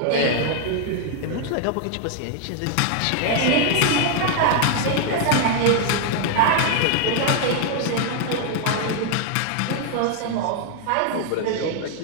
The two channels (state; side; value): different; both; correlation 0.00